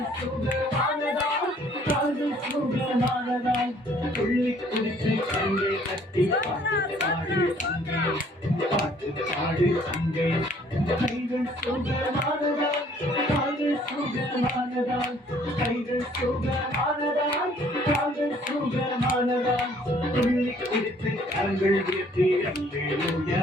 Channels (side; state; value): both; normal; correlation 0.60